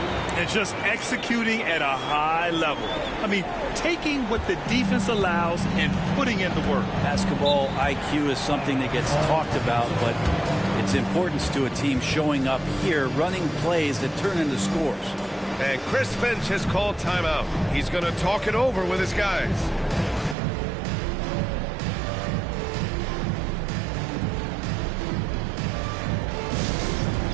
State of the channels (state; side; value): drops out; left; at 20.4 s